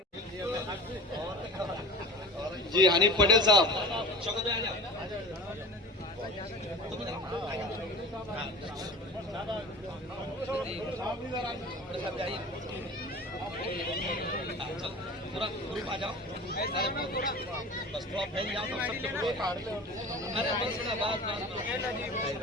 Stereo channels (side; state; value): both; normal; correlation 0.36